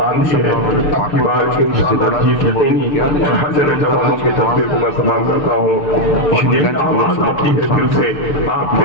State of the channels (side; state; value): right; late; 6.8 ms